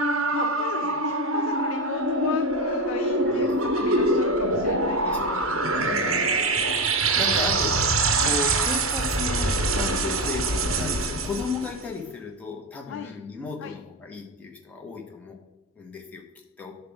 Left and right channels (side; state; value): both; normal; correlation 0.14